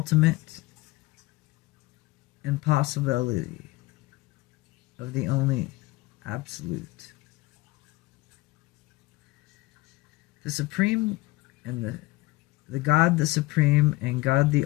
impossibility of the only absolute. The supreme and the God the supreme and God the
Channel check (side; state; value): right; quieter; 20.4 dB